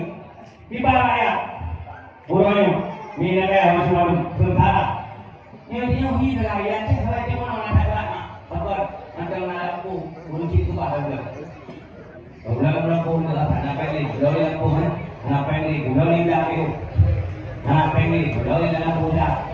kibar rakyat. Pulaunya minyak masih malu sementara. Yang dia hidup rakyat saya dia mana nak ada apa? Mantan aku kunci tu apa dah? Orang-orang pun dah nak pergi, orang pun ngapain ni? Gulali dah tu. Ngapain ni? Gulali dah budak.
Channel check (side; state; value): both; identical; correlation 1.00